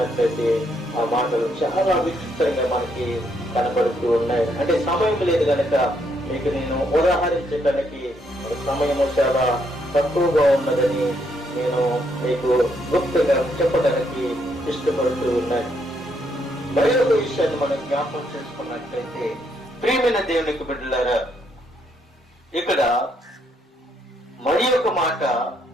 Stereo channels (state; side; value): normal; both; correlation 0.74